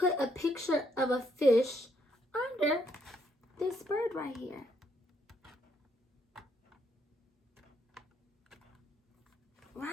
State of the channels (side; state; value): both; normal; correlation 0.73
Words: a picture of a fish under this bird right here?